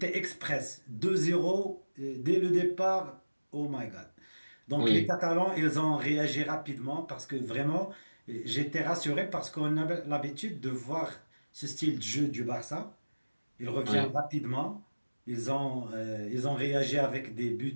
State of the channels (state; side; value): inverted; both; correlation -1.00